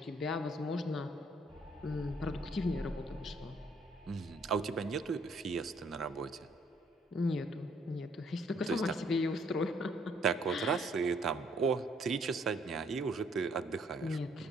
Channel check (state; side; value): normal; both; correlation 0.65